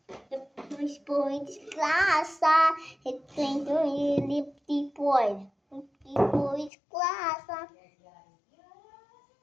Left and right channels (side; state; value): right; drops out; at 6.7 s